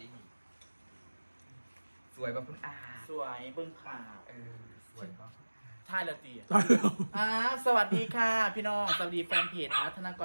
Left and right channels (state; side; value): inverted; both; correlation -1.00